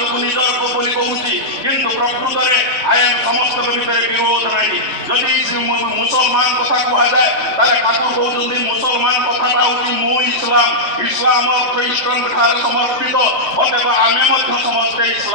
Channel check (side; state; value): left; late; 3.3 ms